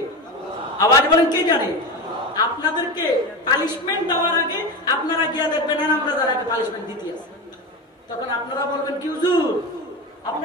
আওয়াজ বলেন কে জানে? আপনাদেরকে পানিশমেন্ট দেওয়ার আগে আপনারা গিয়ে দেখবেন আমরা যারা পানিশমেন্ট দিতে আছে, তখন আপনারা বলবেন কি হুজুর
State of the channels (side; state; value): both; normal; correlation 0.22